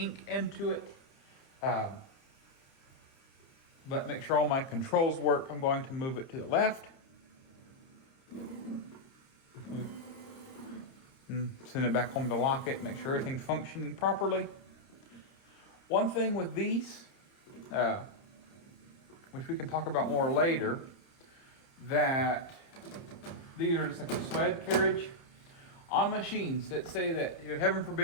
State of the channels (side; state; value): right; late; 30 ms